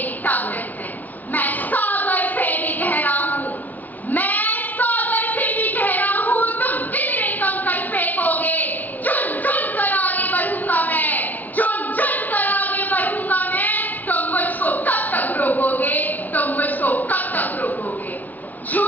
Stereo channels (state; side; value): late; right; 0.083 ms